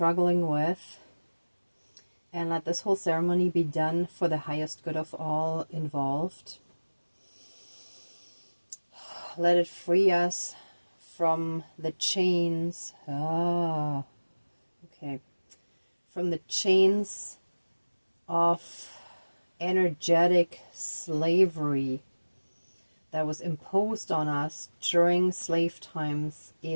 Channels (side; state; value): both; inverted; correlation -1.00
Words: with, and let this whole ceremony be done for the highest good of all involved. Let it free us from the chains. From the chains of energetic slavery that was imposed on us during slave times